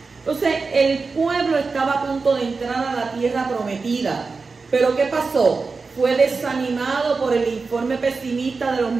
Entonces, el pueblo estaba a punto de entrar a la tierra prometida. Pero ¿qué pasó? Fue desanimado por el informe pesimista de los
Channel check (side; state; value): left; quieter; 4.4 dB